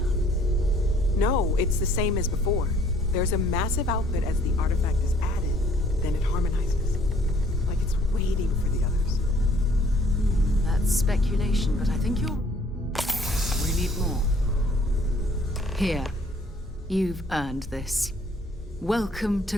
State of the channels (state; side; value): normal; both; correlation 0.59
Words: up? No, it's the same as before. There's a massive output as the artifact is added, then it harmonizes. Like it's waiting for the others. That's speculation, but I think you're... We need more. Here. You've earned this. Welcome